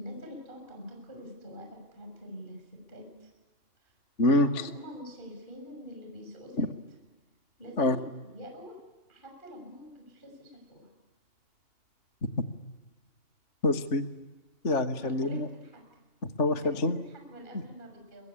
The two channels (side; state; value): right; late; 2.8 ms